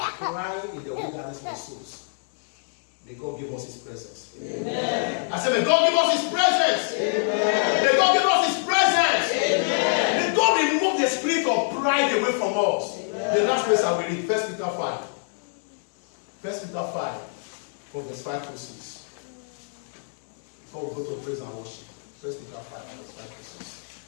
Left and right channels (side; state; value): right; silent; digital silence